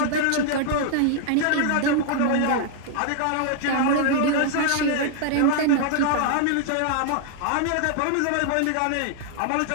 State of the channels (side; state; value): both; different; correlation 0.00